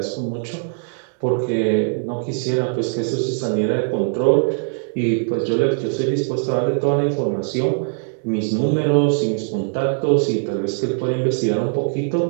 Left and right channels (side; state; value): left; silent; 60 dB below the other